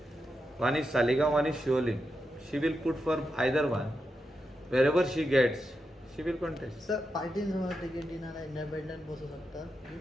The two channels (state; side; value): normal; both; correlation 0.87